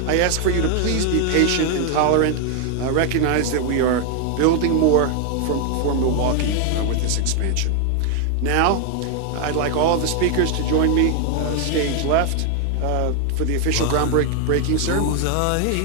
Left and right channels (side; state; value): both; different; correlation 0.00